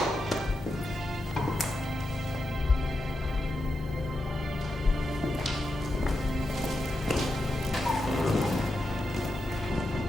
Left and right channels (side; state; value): both; normal; correlation 0.88